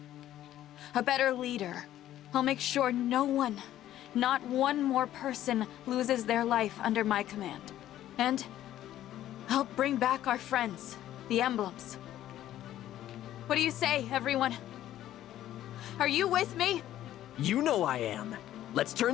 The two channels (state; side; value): quieter; right; 12.7 dB